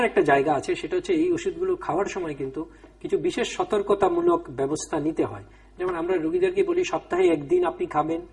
একটা জায়গা আছে, সেটা হচ্ছে এই ওষুধগুলো খাওয়ার সময় কিন্তু কিছু বিশেষ সতর্কতামূলক ব্যবস্থা নিতে হয়। যেমন আমরা রোগীদেরকে বলি সপ্তাহে একদিন আপনি খাবেন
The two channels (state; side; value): identical; both; correlation 1.00